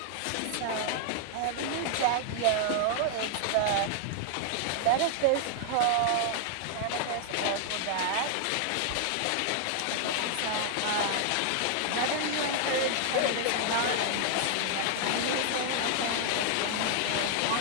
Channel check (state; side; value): different; both; correlation -0.01